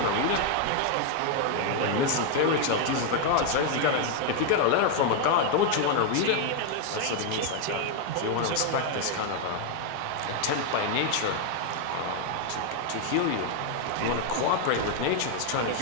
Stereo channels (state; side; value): different; both; correlation 0.00